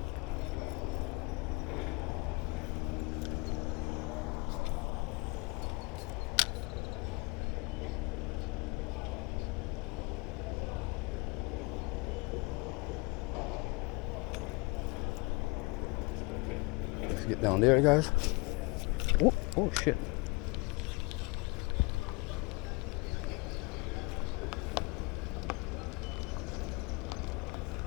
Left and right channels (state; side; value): quieter; right; 27.4 dB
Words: Let's get down there, guys. Oh, oh shit.